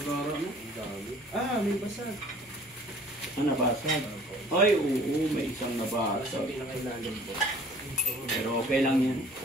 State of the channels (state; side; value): normal; both; correlation 0.52